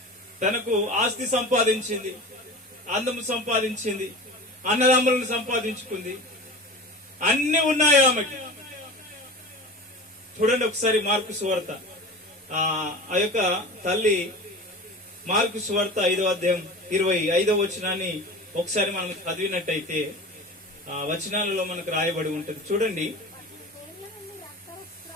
తనకు ఆస్తి సంపాదించింది, అందము సంపాదించింది, అన్నదమ్ములను సంపాదించుకుంది, అన్ని ఉన్నాయి ఆమెకి. చూడండి ఒకసారి మార్కు సువార్త, ఆ యొక్క తల్లి మార్కు సువార్త 5వ అధ్యాయం 25వ వచనాన్ని ఒకసారి మనం చదివినట్టయితే ఆ వచనాలలో మనకు రాయబడి ఉంటుంది.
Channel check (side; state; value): both; normal; correlation 0.34